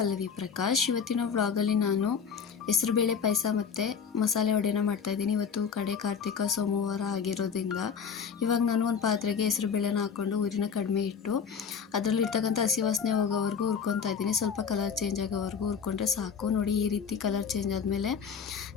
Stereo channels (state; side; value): quieter; right; 6.5 dB